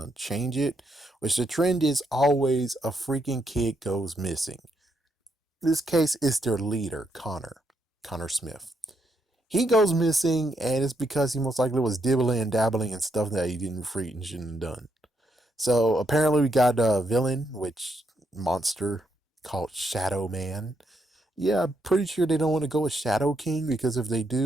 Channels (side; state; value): both; normal; correlation 0.78